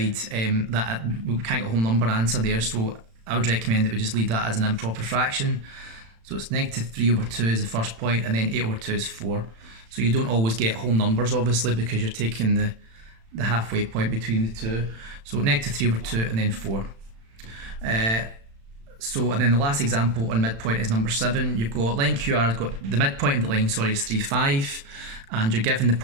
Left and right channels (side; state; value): left; late; 36 ms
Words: that, we can't get a whole number answer there, so I would recommend that we just leave that as an improper fraction. So it's -3 over 2 is the first point, and then 8 over 2 is 4. So you don't always get whole numbers obviously because you're taking the halfway point between the two. So -3 over 2 and then 4. And then the last example on midpoint is number 7. You've got line QR has got the midpoint of the line, is 3, 5, and you're given the